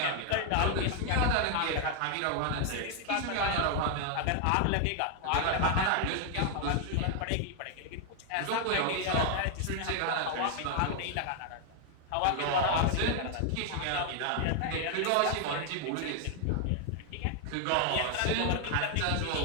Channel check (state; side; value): different; both; correlation 0.00